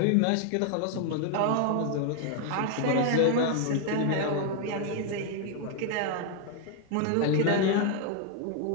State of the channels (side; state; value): both; different; correlation 0.00